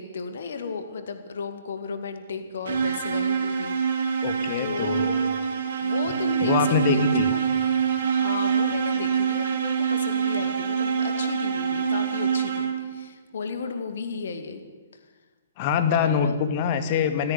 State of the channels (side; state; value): both; inverted; correlation -0.57